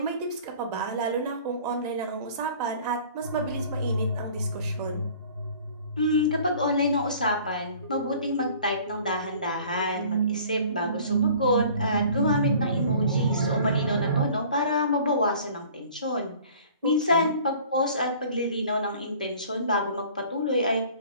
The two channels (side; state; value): both; inverted; correlation -0.49